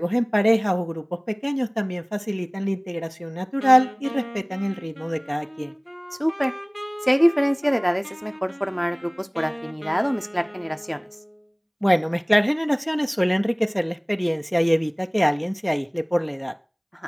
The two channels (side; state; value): both; identical; correlation 1.00